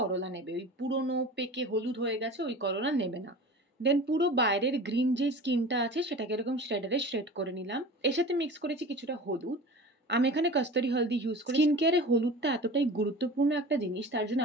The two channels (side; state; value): both; normal; correlation 0.36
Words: করলা নেবে, ওই পুরনো পেকে হলুদ হয়ে গেছে ওই করলা নেবে না। দেন পুরো বাইরের গ্রিন যে স্কিনটা আছে সেটাকে এরকম শ্রেডারে শ্রেড করে নিলাম। এর সাথে মিক্স করেছি কিছুটা হলুদ। আমি এখানে কস্তুরি হলদি ইউজ করি। স্কিন কেয়ারে হলুদটা এতটাই গুরুত্বপূর্ণ একটা জিনিস, তার জন্য